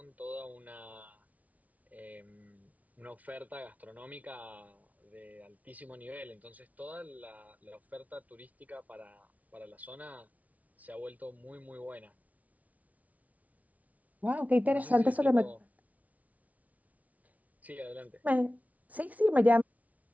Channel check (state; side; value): late; left; 0.071 ms